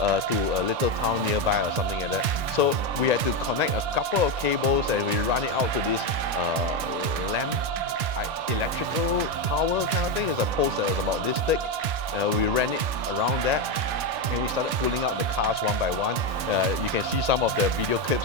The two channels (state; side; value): late; left; 1.8 ms